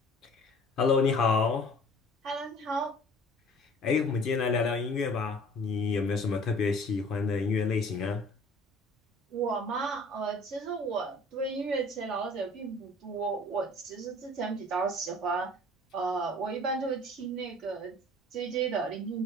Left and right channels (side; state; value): both; normal; correlation 0.49